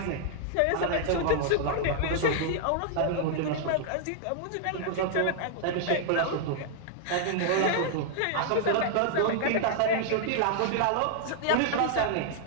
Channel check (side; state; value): both; different; correlation -0.01